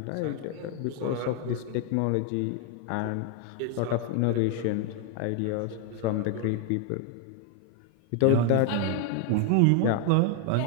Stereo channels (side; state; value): both; different; correlation 0.01